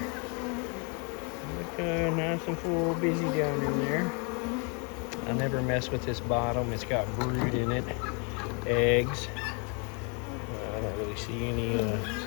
Look nice and full, busy down in there. I never mess with this bottom. It's got brood in it, eggs. I don't really see any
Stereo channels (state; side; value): quieter; right; 35.5 dB